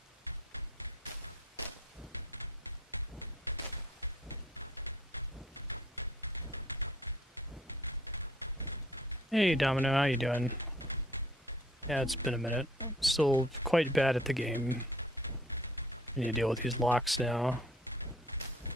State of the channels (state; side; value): normal; both; correlation 0.57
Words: Hey Domino, how you doing? Yeah, it's been a minute. I'm still quite bad at the game. I need to deal with these locks now.